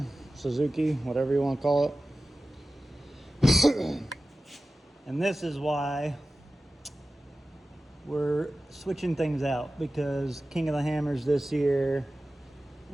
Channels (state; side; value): normal; both; correlation 0.95